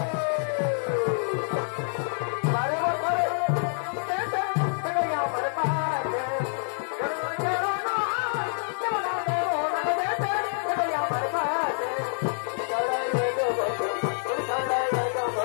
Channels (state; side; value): silent; right; 60 dB below the other